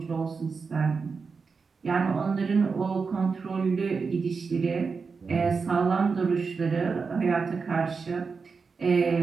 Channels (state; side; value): quieter; left; 5.0 dB